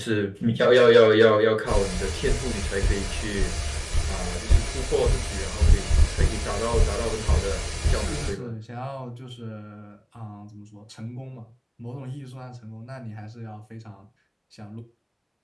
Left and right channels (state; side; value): identical; both; correlation 1.00